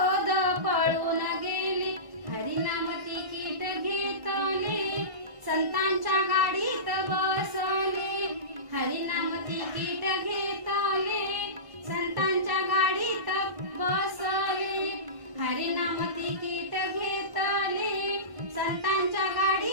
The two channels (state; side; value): late; left; 1.1 ms